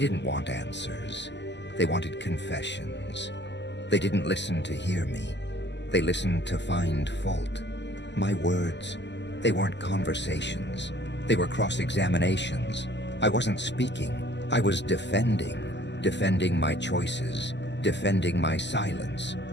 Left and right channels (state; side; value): late; right; 0.51 ms